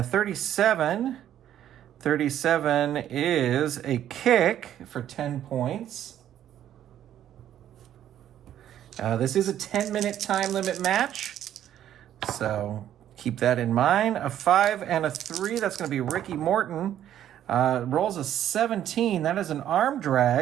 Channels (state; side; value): quieter; left; 11.1 dB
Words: 37. 37 is a kick for 10 points. This is a 10-minute time limit match, so keep that in mind. A 5 and a 3, that's going to be Ricky Morton. Rolls a 17. That is an arm